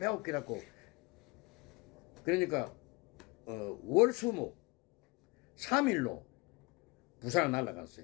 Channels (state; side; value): quieter; right; 25.7 dB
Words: 그러니까 월수목 3일로 부산을